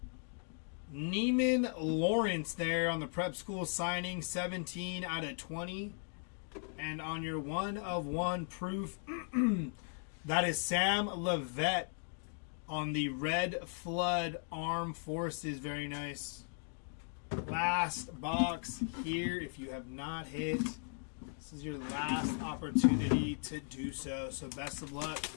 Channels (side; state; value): right; silent; 53 dB below the other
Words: Neiman Lawrence there on the prep school signing, 17 out of 20. And on your 1 of 1 proof, that is Sam Levette on the Red Flood Armed Forces. Very nice. Last box here. If you have not hit, this is your last opportunity to do so. So best of luck.